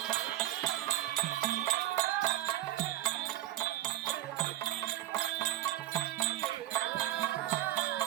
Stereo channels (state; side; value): quieter; left; 13.8 dB